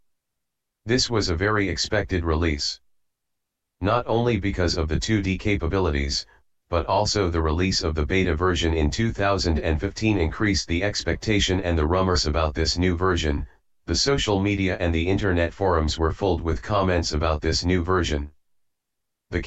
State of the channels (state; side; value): identical; both; correlation 1.00